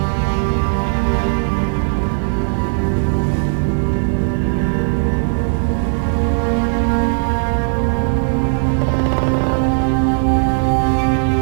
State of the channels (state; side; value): silent; left; digital silence